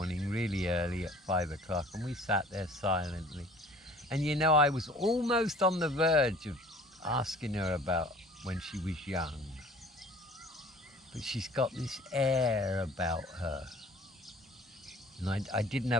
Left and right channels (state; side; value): normal; both; correlation 0.50